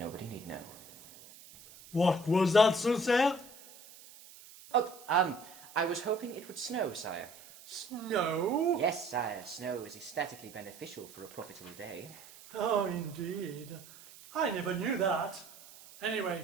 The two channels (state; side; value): noise; right; hiss, 20 dB below the sound